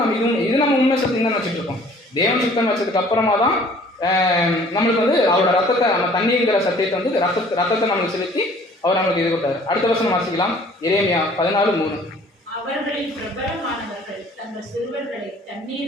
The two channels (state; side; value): normal; both; correlation 0.54